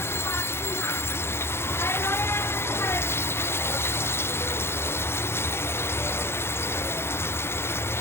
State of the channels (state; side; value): late; right; 0.12 ms